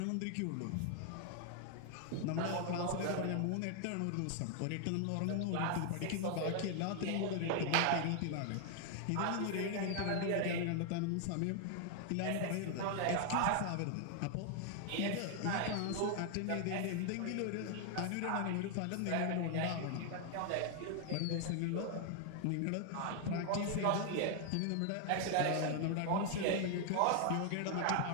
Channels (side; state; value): both; different; correlation 0.00